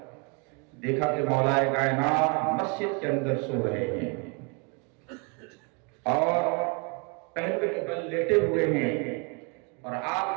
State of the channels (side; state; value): left; quieter; 33.4 dB